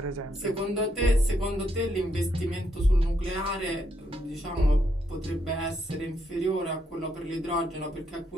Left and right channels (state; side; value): normal; both; correlation 0.76